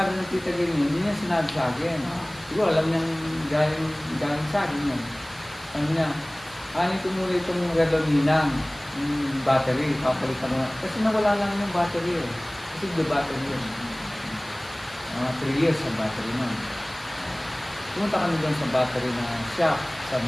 ng Tita Gerlin, hindi niya sinabi sa akin. Siguro, alam niyang galing sa akin yun. Ano niya, kanin ko muna itong redoninang, yung battery, papalitan ko na. Kasi nawala lang yung battery eh. Kasi the battery yun. 3 years ang battery nun. Pumunta kami doon sa battery na shop, sa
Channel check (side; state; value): right; noise; hiss, 21 dB below the sound